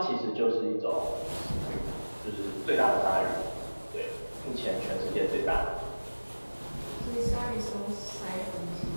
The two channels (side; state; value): both; inverted; correlation -1.00